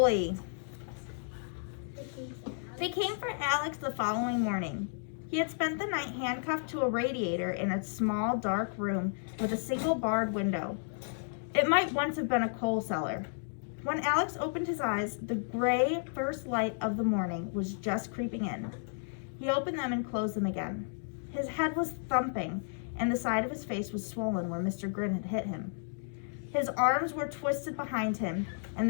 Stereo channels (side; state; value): right; silent; digital silence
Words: They came for Alex the following morning. He had spent the night handcuffed to a radiator in a small, dark room with a single barred window. It might once have been a coal cellar. When Alex opened his eyes, the gray first light of the morning was just creeping in. He opened them and closed them again. His head was thumping, and the side of his face was swollen where Mr. Grin had hit him. His arms were twisted behind him, and